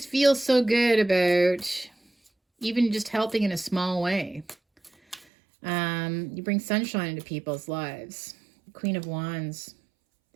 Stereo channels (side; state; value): left; drops out; at 5.2 s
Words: feel so good about even just helping in a small way. You bring sunshine into people's lives. Queen of Wands,